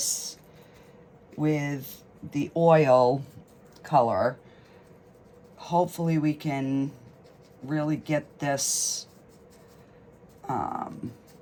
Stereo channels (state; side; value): identical; both; correlation 1.00